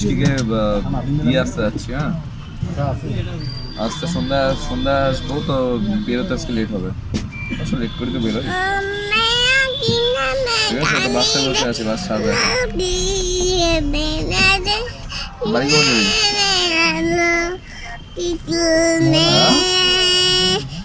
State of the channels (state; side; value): identical; both; correlation 1.00